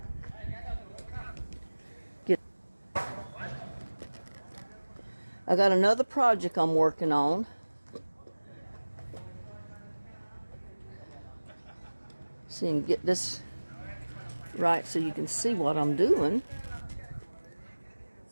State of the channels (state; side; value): inverted; both; correlation -1.00